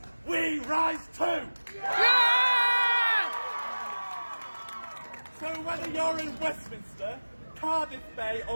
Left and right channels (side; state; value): both; inverted; correlation -1.00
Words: we rise too! So whether you're in Westminster, Cardiff Bay